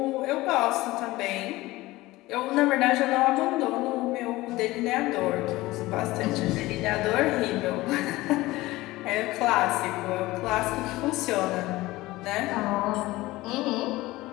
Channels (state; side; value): quieter; right; 18.9 dB